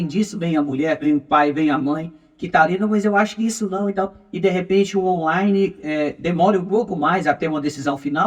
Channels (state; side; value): identical; both; correlation 1.00